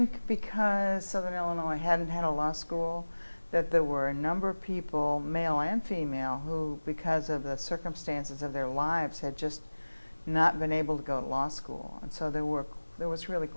because Southern Illinois hadn't had a law school, that there were a number of people, male and female, who, because of the circumstances of their lives, had just not been able to go to law school. And so there was really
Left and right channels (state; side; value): inverted; both; correlation -1.00